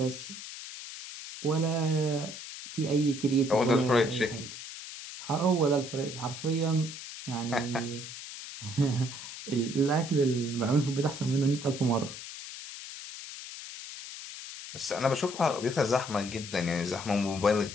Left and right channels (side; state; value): left; noise; hiss, 11 dB below the sound